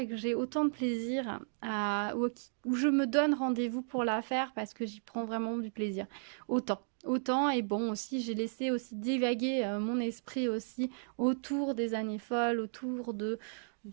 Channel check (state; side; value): silent; left; digital silence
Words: que j'ai autant de plaisir où je me donne rendez-vous pour la faire parce que j'y prends vraiment du plaisir. Autant et bon aussi j'ai laissé aussi divaguer mon esprit aussi autour des années folles, autour de